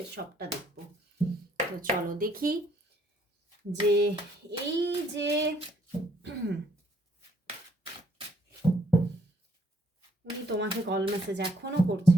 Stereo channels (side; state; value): both; normal; correlation 0.67